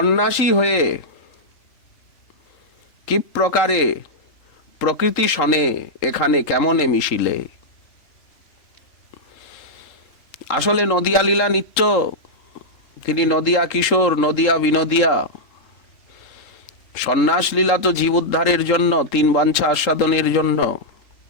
হয়ে কি প্রকারে প্রকৃতি সনে এখানে কেমনে মিশিলে। আসলে নদিয়া লীলা নিত্য, তিনি নদিয়া কিশোর, নদিয়া বিনোদিয়া। সন্ন্যাস লীলা তো জীব উদ্ধারের জন্য, তিন বাঞ্ছা আস্বাদনের জন্য।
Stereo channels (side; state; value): right; late; 3.8 ms